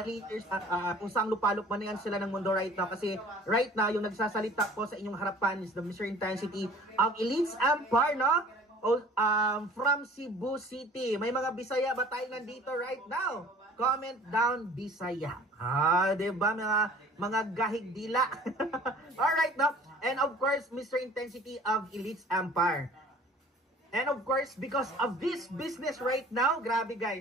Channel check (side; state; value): both; normal; correlation 0.48